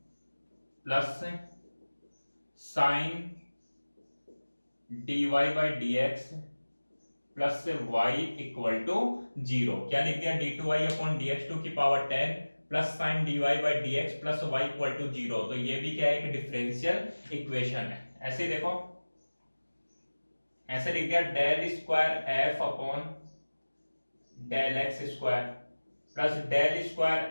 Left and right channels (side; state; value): both; inverted; correlation -1.00